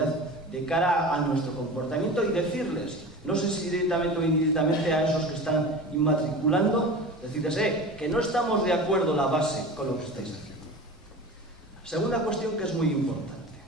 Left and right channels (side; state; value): both; normal; correlation 0.33